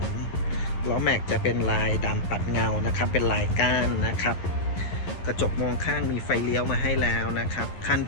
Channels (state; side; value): late; right; 11 ms